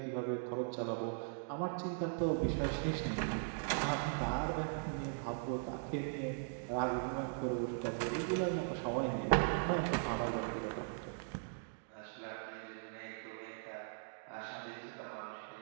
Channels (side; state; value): left; silent; digital silence